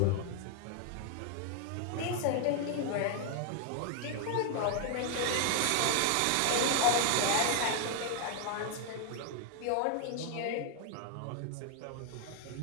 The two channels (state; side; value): different; both; correlation 0.00